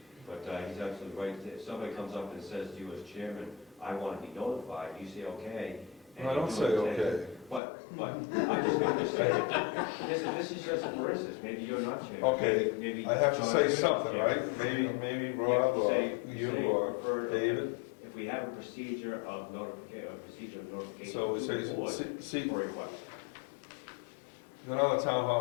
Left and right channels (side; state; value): right; drops out; at 7.6 s